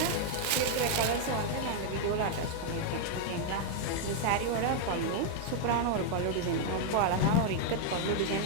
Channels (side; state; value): both; different; correlation 0.00